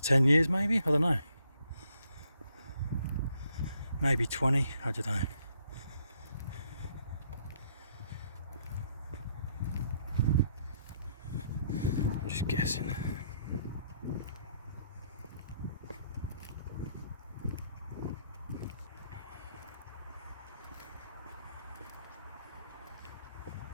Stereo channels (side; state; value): both; inverted; correlation -0.71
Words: 10 years maybe? I don't know. Maybe 20, I don't know. I'm just guessing.